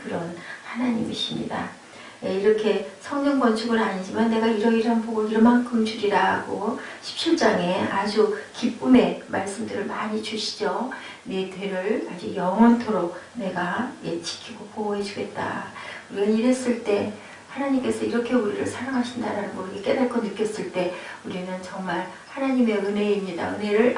그런 하나님이십니다. 이렇게 성전 건축은 아니지만 내가 이러이러한 복을 이만큼 주리라 하고 17장에 아주 기쁨의 말씀들을 많이 주시죠. 네 뒤를 아주 영원토록 내가 지키고 보호해 주겠다. 우리가 이랬을 때 하나님께서 이렇게 우리를 사랑하신다는 걸 깨닫고 느꼈을 때 우리는 정말 하나님의 은혜입니다. 은혜를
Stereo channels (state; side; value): identical; both; correlation 1.00